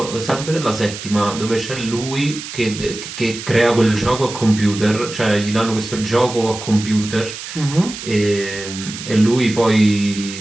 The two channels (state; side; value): noise; right; hiss, 10 dB below the sound